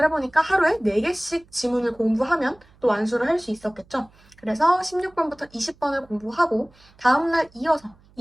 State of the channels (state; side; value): noise; right; hum, 29 dB below the sound